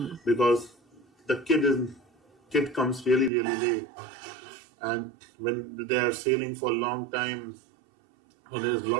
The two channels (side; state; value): left; drops out; at 3.3 s